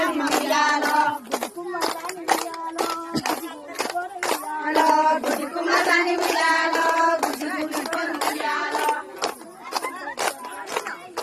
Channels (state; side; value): identical; both; correlation 1.00